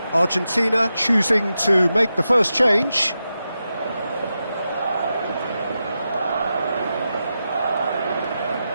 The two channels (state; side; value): inverted; both; correlation -0.89